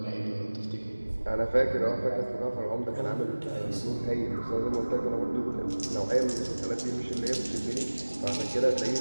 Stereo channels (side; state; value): both; inverted; correlation -1.00